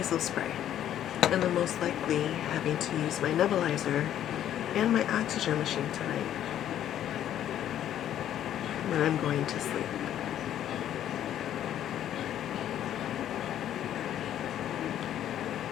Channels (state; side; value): quieter; right; 11.1 dB